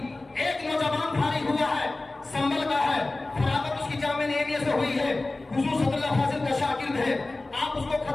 एक नौजवान फारिग हुआ है, संभल का है, फरागत उसकी जामिया निज़ामिया से हुई है, हुजूर सल्लल्लाहु अलैहि वसल्लम का शागिर्द है। आप उसको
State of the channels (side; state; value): right; quieter; 3.0 dB